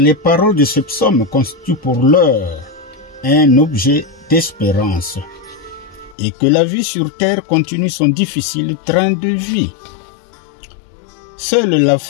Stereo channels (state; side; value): drops out; right; at 6.2 s